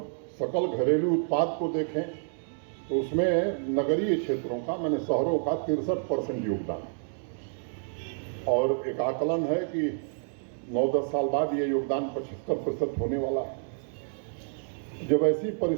सकल घरेलू उत्पाद को देखें तो उसमें नगरीय क्षेत्रों का, मैंने शहरों का 63% योगदान है और एक आकलन है कि 9-10 साल बाद ये योगदान 75% होने वाला है। जब ऐसी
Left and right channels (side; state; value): left; silent; digital silence